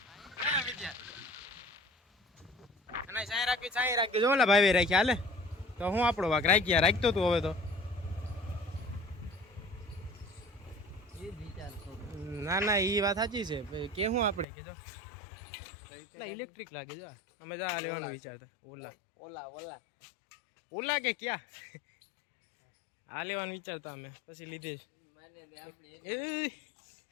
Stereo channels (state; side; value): drops out; right; at 14.5 s